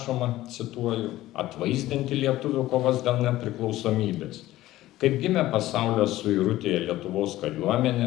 cituoju, atvaizdinti lietuvių kovas dėl nepriklausomybės. Kaip gimė pasaulio suirutėje Lietuvos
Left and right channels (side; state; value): right; quieter; 15.8 dB